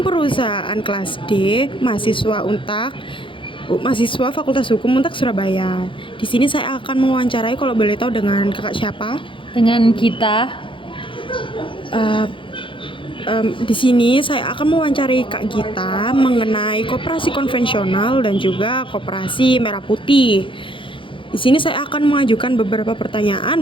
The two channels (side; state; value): right; late; 0.25 ms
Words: Perusahaan kelas D, mahasiswa Untak, mahasiswa Fakultas Hukum Untak Surabaya. Di sini saya akan mewawancarai, kalau boleh tahu, dengan kakak siapa? Dengan kita. Di sini saya akan mewawancarai Kak Gita mengenai koperasi konvensional dan juga koperasi merah putih. Di sini saya akan mengajukan beberapa